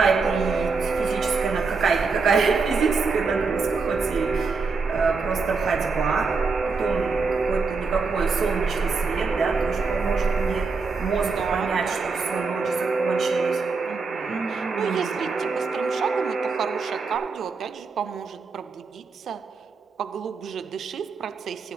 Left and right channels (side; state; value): left; quieter; 4.6 dB